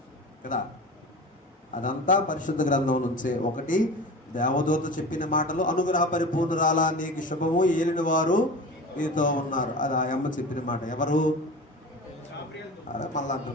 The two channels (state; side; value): normal; both; correlation 0.34